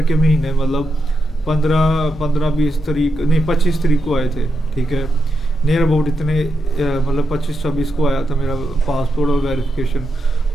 के महीने, मतलब 15-20 तारीख नहीं 25 तारीख को आए थे, ठीक है। नियर अबाउट इतने मतलब 25-26 को आया था मेरा पासपोर्ट और वेरिफिकेशन।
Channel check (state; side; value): normal; both; correlation 0.85